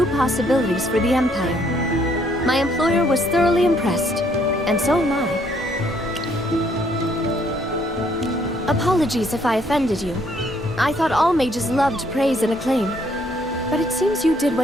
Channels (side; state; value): both; normal; correlation 0.67